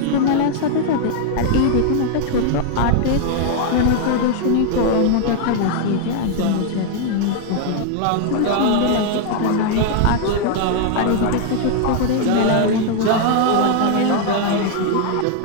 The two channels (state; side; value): different; both; correlation 0.00